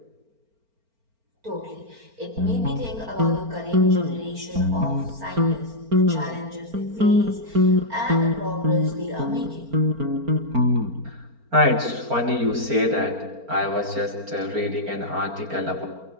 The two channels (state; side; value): late; left; 4.4 ms